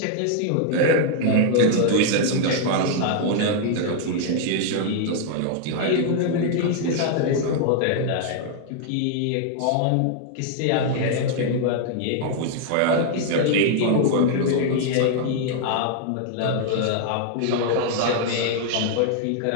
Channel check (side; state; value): both; different; correlation 0.00